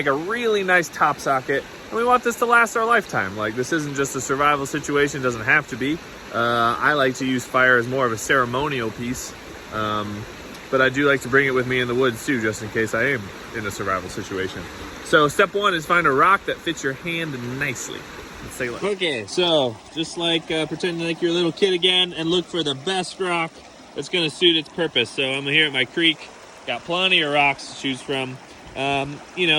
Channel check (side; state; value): both; identical; correlation 1.00